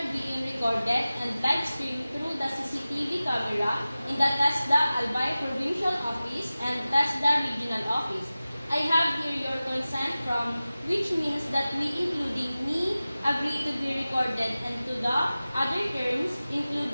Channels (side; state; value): both; inverted; correlation -0.96